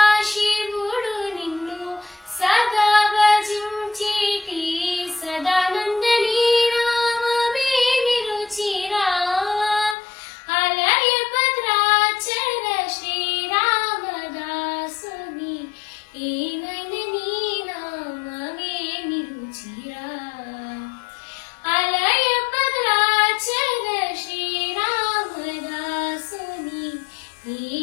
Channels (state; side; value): drops out; right; at 10.0 s